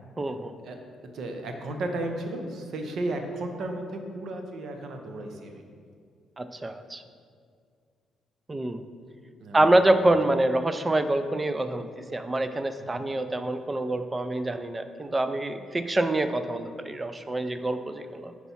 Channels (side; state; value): both; normal; correlation 0.92